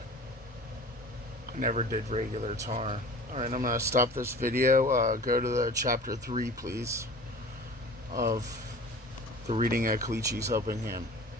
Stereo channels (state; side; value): normal; both; correlation 0.41